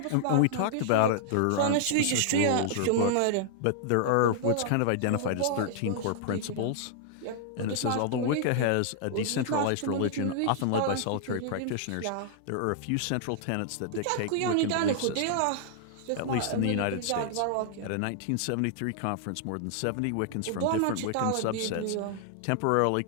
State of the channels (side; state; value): both; different; correlation -0.01